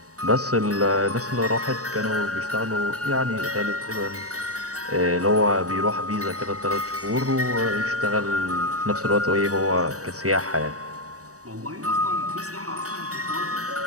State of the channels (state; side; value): late; left; 0.66 ms